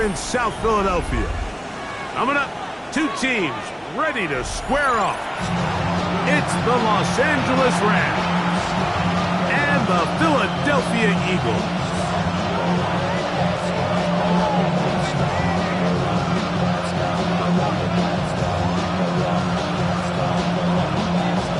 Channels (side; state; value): both; identical; correlation 1.00